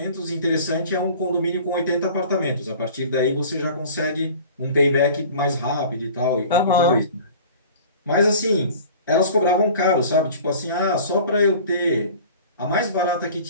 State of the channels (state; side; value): inverted; both; correlation -0.44